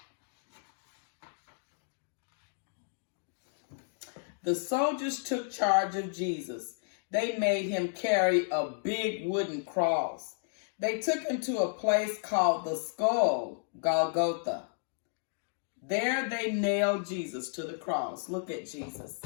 The soldiers took charge of Jesus. They made him carry a big wooden cross. They took him to a place called the Skull, Golgotha. There they nailed Jesus to the cross. Look at Jesus.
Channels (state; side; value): silent; right; digital silence